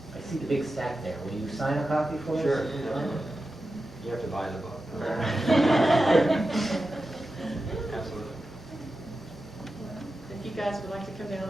I see the big stack there. Will you sign a copy for us? Sure. You have to buy the book. Absolutely. If you guys would like to come down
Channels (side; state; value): both; normal; correlation 0.92